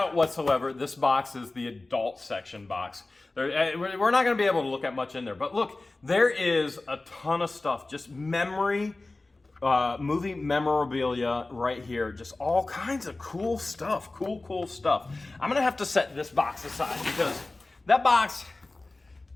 whatsoever this box is the adult section box. We're not going to be able to look at much in there, but look, there is a ton of stuff, just movie memorabilia right here, just all kinds of cool stuff, cool stuff. I'm going to have to set this box aside because that box,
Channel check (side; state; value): right; quieter; 3.1 dB